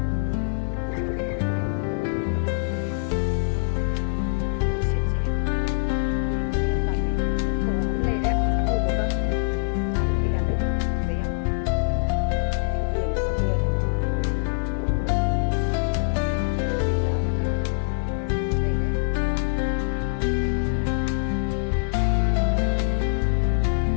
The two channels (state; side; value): silent; right; digital silence